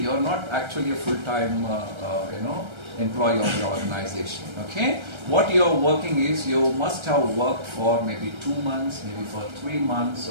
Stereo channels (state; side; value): late; left; 1.3 ms